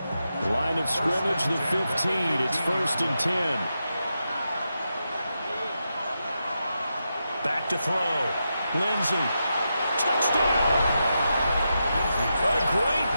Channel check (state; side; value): inverted; both; correlation -0.87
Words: Line of scrimmage, the 15. It's 1st and 10. Back to throw. Lindsey. Touchdown! A great